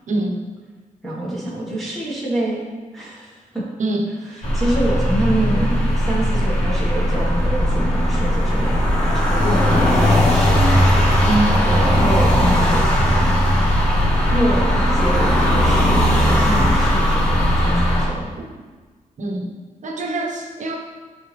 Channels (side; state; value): both; normal; correlation 0.79